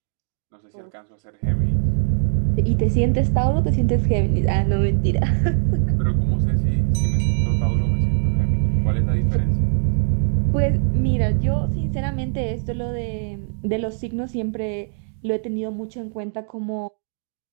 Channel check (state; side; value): silent; left; digital silence